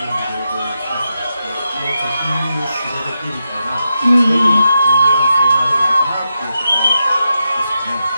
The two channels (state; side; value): inverted; both; correlation -0.87